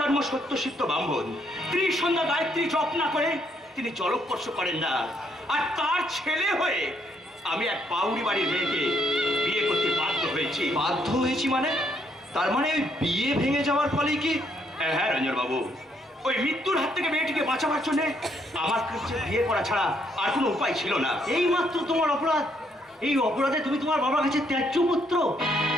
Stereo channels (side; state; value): both; normal; correlation 0.71